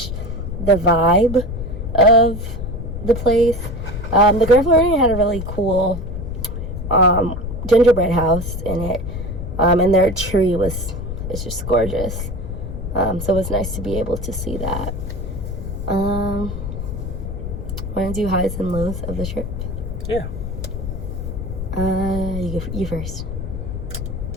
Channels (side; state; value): left; noise; rumble, 6 dB below the sound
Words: the vibe of the place. The Grand Floridian had a really cool gingerbread house in it, and their tree is just gorgeous. So it was nice to be able to see that. Want to do highs and lows of the trip? Yeah. You first.